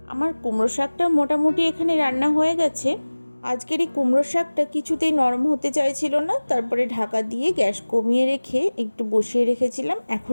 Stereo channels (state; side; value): inverted; both; correlation -1.00